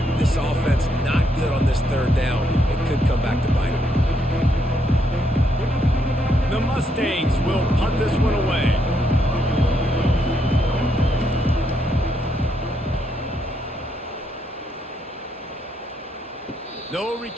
This offense not good on this 3rd down. It could come back to bite them. The Mustangs will punt this one away. No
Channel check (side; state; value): both; normal; correlation 0.76